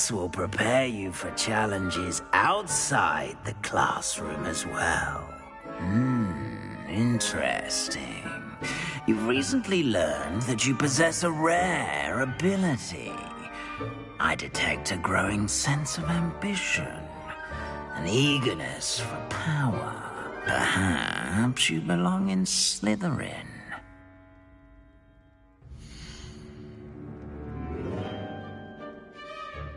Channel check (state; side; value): identical; both; correlation 1.00